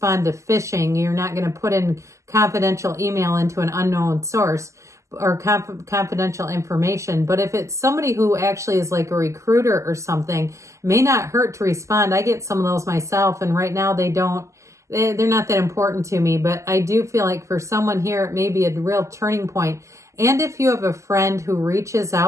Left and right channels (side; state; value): left; late; 0.14 ms